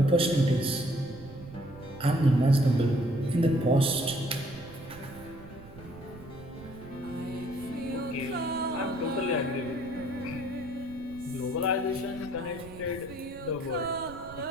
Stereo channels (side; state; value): right; noise; rumble, 17 dB below the sound